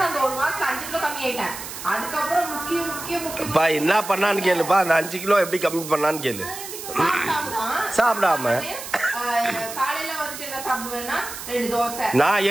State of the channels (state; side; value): noise; right; hiss, 10 dB below the sound